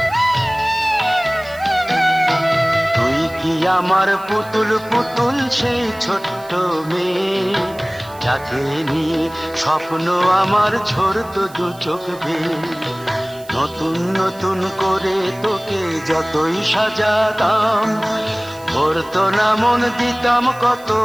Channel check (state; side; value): noise; right; hiss, 22 dB below the sound